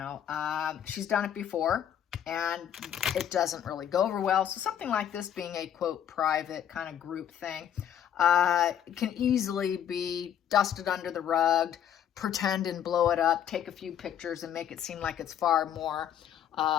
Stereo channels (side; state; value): right; quieter; 9.7 dB